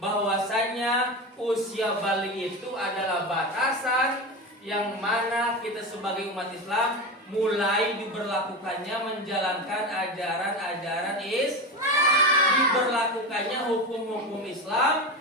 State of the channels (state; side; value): normal; both; correlation 0.21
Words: bahwasanya usia balik itu adalah batasan yang mana kita sebagai umat Islam mulai diberlakukannya menjalankan ajaran-ajaran Islam, diberlakukannya hukum-hukum Islam,